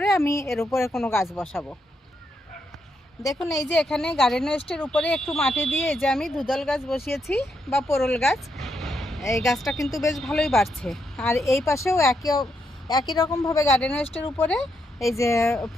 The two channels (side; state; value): both; normal; correlation 0.80